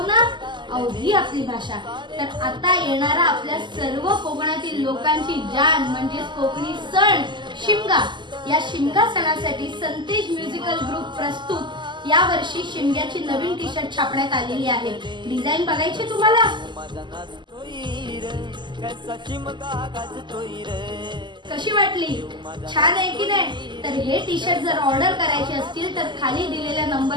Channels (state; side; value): late; left; 0.22 ms